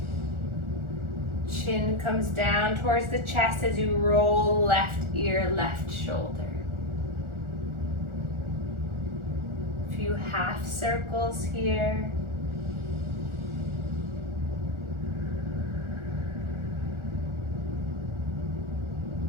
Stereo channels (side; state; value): left; late; 1.4 ms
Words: Chin comes down towards the chest as you roll left ear, left shoulder. A few half circles here.